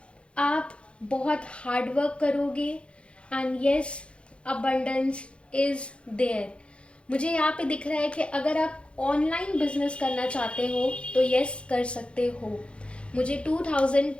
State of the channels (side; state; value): right; late; 0.059 ms